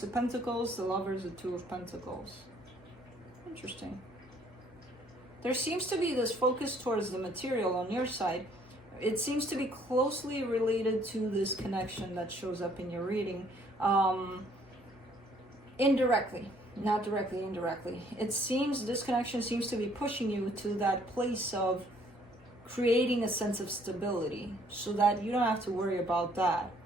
of Pentacles, the Lovers, the Two of Pentacles. Interesting. There seems to be this focus towards the material on your side. It seems to be closely related to this connection that shows up in your reading. Indirectly, not directly, indirectly. It seems this connection seems to be pushing you to that place of creating a sense of stability so that you don't have to worry about that,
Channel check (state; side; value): normal; both; correlation 0.63